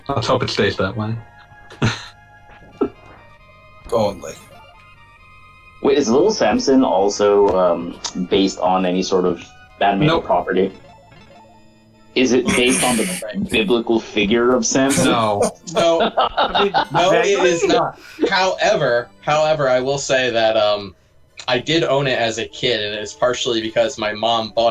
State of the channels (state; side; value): identical; both; correlation 1.00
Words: Let's hope it stays that way. only. Wait, is Little Samson also based on any sort of animated property? Is it based on the biblical figure of Samson? No. No, I mean, no, it vaguely? is not. However, I will say that I did own it as a kid, and it's partially because my mom